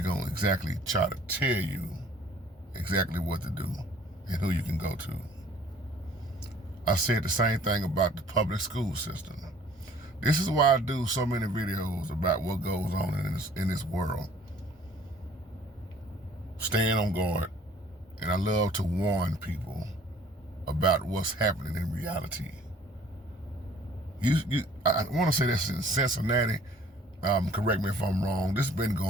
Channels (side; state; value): both; normal; correlation 0.55